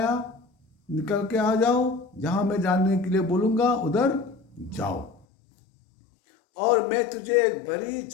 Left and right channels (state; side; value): drops out; right; at 5.2 s